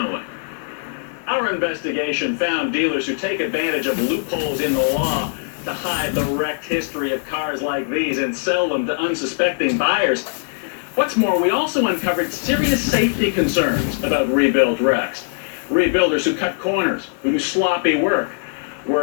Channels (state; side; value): silent; right; digital silence